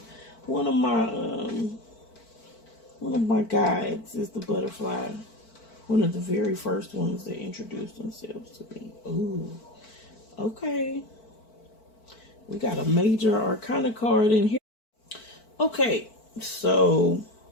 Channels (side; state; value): right; late; 4.5 ms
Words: guides is the butterfly. One of the very first ones that introduced themselves to me. Ooh, okay. We got a major arcana card in here. Okay, so